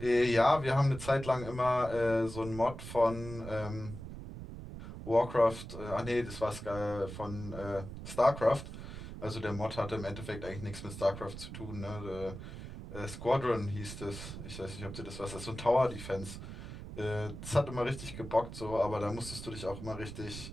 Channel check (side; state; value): right; noise; rumble, 10 dB below the sound